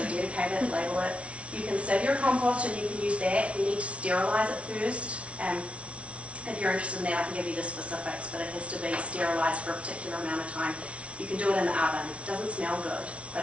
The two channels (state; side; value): late; left; 0.062 ms